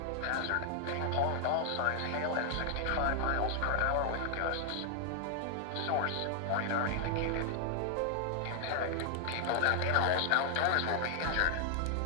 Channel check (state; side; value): different; both; correlation 0.00